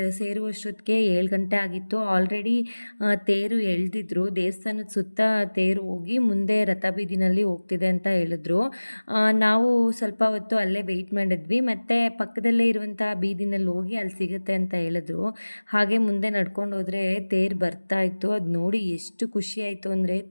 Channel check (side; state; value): both; inverted; correlation -1.00